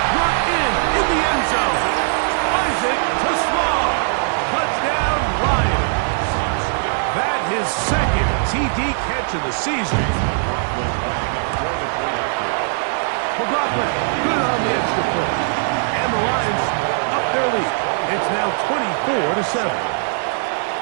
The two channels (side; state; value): left; silent; digital silence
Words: brought in the end zone. Isaac to Slaw. Touchdown, Lions. That his second TD catch of the season. McLaughlin, good on the extra point. And the Lions up their lead. It's now 24-7.